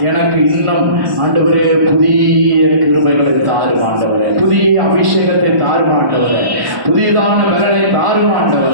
எனக்கு இன்னும் ஆண்டவரே புதிய கிருபைகளை தாரும் ஆண்டவரே, புதிய அபிஷேகத்தை தாரும் ஆண்டவரே, புதியதான பலனை தாரும்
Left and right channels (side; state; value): left; late; 1.1 ms